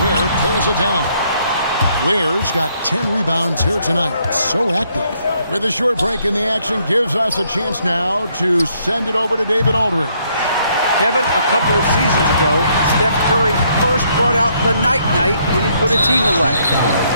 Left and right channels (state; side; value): inverted; both; correlation -0.70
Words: Ware pulls it down. Ware's got 10 rebounds here tonight. So active. With a short break in the action, gives us a chance now to send it over to David Aldridge. Kevin, a couple of seasons ago, Steph Curry first brought out the night-night when he put a team away.